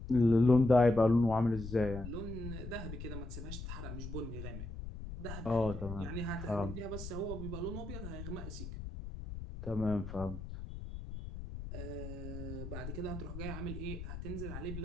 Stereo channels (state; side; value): noise; left; rumble, 9 dB below the sound